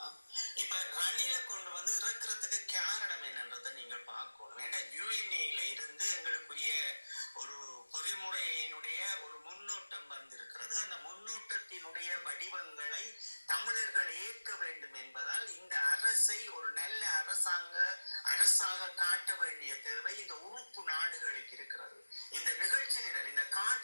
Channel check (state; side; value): inverted; both; correlation -1.00